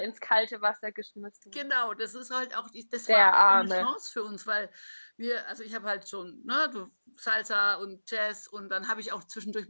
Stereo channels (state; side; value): inverted; both; correlation -1.00